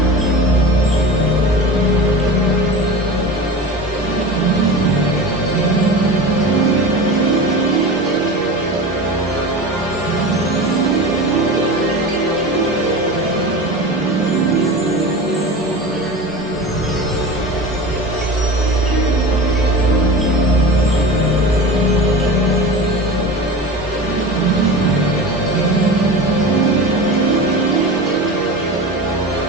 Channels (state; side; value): normal; both; correlation 0.31